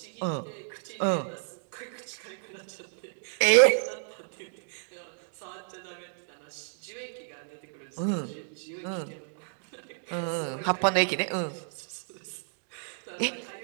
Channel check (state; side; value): silent; left; digital silence